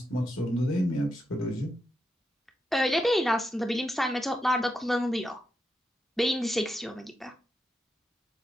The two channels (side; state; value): both; normal; correlation 0.85